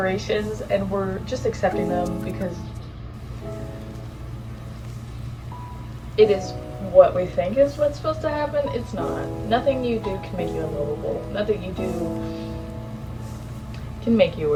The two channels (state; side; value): identical; both; correlation 1.00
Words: and we're just accepting them because it is what we think is what's supposed to happen. It's not. Nothing you do can make you unlovable. Nothing you do can make you